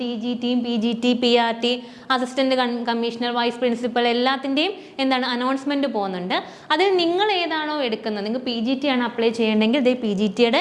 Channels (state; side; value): identical; both; correlation 1.00